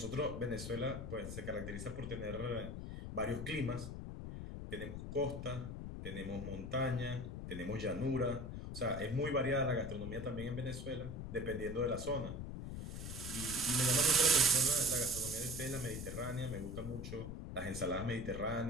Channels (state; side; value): noise; left; rumble, 7 dB below the sound